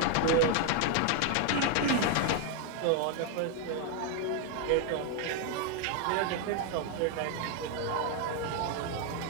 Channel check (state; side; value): different; both; correlation 0.01